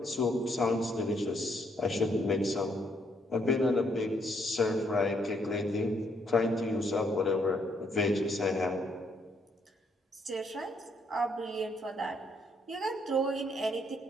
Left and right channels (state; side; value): normal; both; correlation 0.72